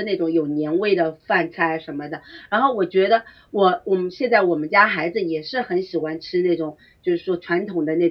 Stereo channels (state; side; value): identical; both; correlation 1.00